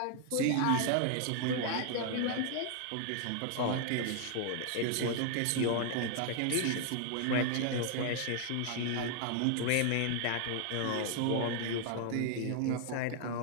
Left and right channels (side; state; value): both; different; correlation 0.00